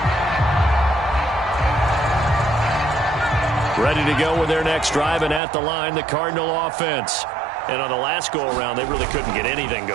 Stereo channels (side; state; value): left; drops out; at 5.4 s